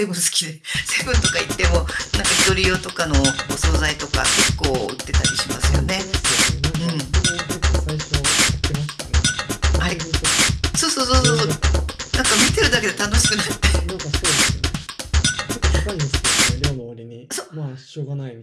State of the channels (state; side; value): identical; both; correlation 1.00